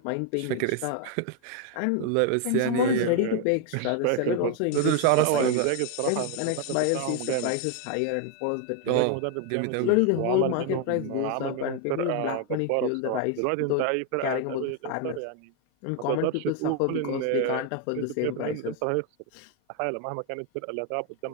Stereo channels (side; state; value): both; different; correlation 0.01